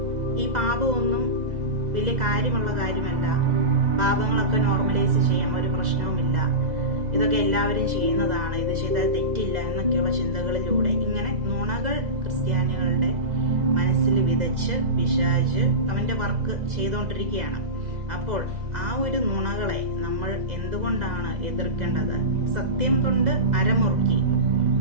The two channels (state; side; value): late; left; 2.0 ms